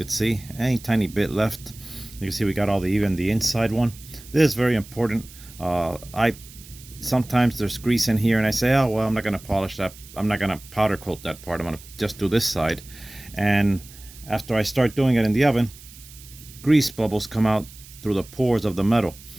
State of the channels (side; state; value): right; noise; hiss, 19 dB below the sound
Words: see. Any tiny bit left. You can see we got even the inside one. This is very important. Sometimes there's grease in here and I say, oh well, I'm not gonna polish that, I'm not gonna powder coat that part, I'm gonna just do this side. And after I start doing it in the oven, grease bubbles come out through the pores of the metal,